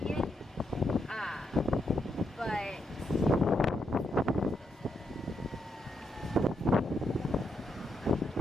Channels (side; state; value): both; normal; correlation 0.80